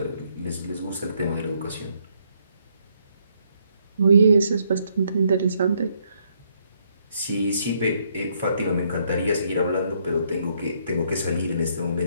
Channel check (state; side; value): inverted; both; correlation -0.72